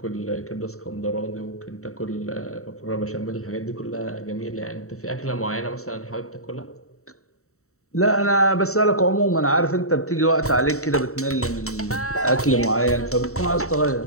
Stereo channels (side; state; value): right; late; 0.64 ms